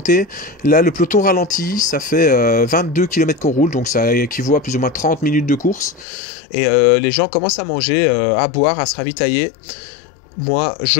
Là, le peloton ralentit. Ça fait 22 km qu'on roule. Donc, ça équivaut à plus ou moins 30 minutes de course. Et les gens commencent à manger, à boire, à se ravitailler. Moi,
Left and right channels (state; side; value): drops out; right; at 6.1 s